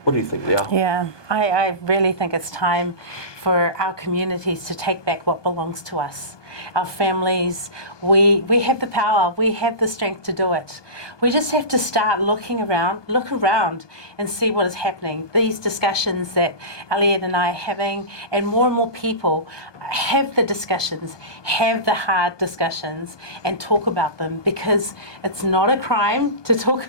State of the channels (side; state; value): right; late; 1.2 ms